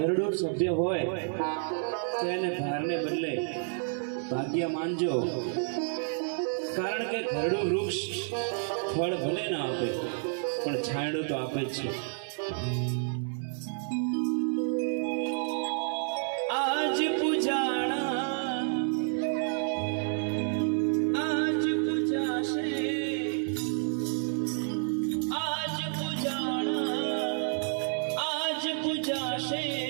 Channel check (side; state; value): left; silent; digital silence